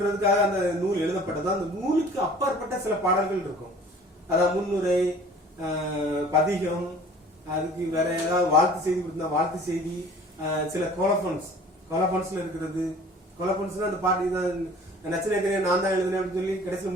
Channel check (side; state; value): both; normal; correlation 0.48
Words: அந்த நூல் எழுதப்பட்டதோ அந்த நூலுக்கு அப்பாற்பட்ட சில பாடல்கள் இருக்கும். அதாவது முன்னுரை, பதிகம், அதுக்கு வேற ஏதாவது வாழ்த்து செய்தி கொடுத்தா வாழ்த்து செய்தி, சில கோலபன்ஸ்ல இருக்கிறது. கோலபன்ஸ்னா அந்த பாட்டு நச்சினேக்கரே நான் தான் எழுதுனேன் அப்படின்னு சொல்லி கடைசியில்